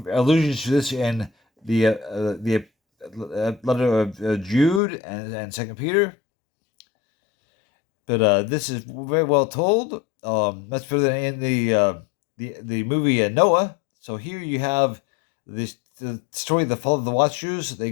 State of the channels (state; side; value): drops out; right; at 4.8 s